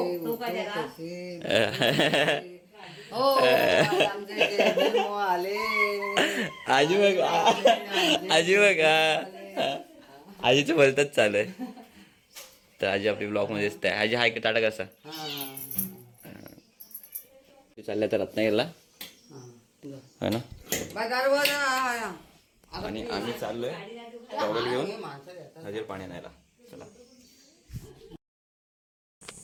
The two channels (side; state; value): both; identical; correlation 1.00